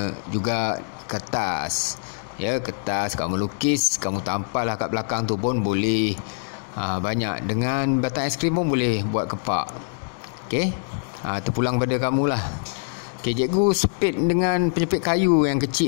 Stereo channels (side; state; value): right; silent; 63 dB below the other